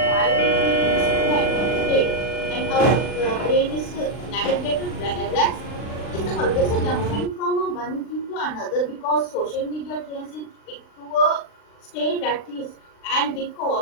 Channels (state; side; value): late; right; 39 ms